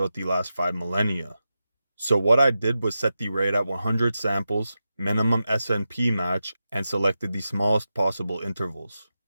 the last 5 millennia. So what I did was set the rate at 100 samples, minimum SNP match, and selected the smallest possible intervals.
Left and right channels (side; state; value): both; inverted; correlation -0.91